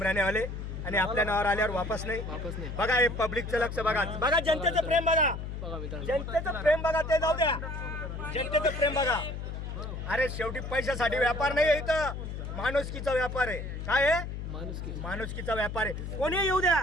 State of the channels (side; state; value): left; noise; hum, 6 dB below the sound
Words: आले आणि आपल्या नावावर आल्यावर वापस नाही. बघा हे पब्लिकचं लक्ष बघा. बघा जनतेचं प्रेम बघा. जनतेचं प्रेम बघा. ते जाऊ द्या. जनतेचं प्रेम बघा. अरे शेवटी पैशासाठी व्यापार नाही आहे इथं. माणुसकीचा व्यापार आहे. काय आहे माणुसकीचा व्यापार आहे. कोणी येऊ द्या,